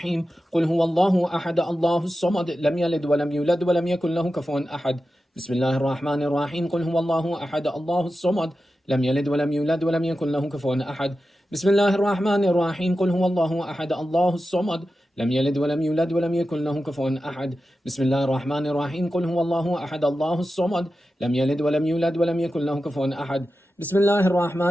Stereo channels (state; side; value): normal; both; correlation 0.92